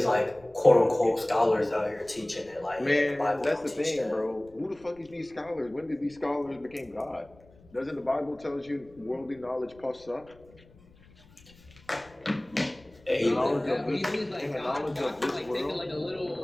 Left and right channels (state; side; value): noise; left; rumble, 26 dB below the sound